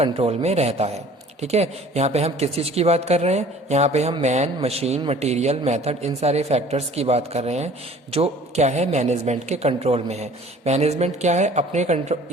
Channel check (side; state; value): both; normal; correlation 0.50